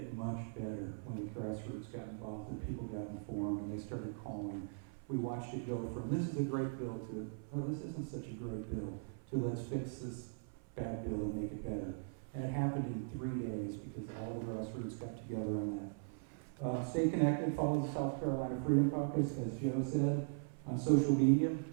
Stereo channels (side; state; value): left; silent; 51 dB below the other